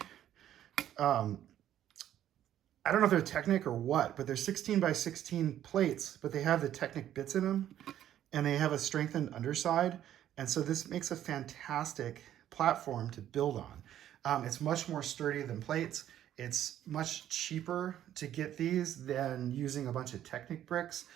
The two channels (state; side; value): quieter; left; 11.5 dB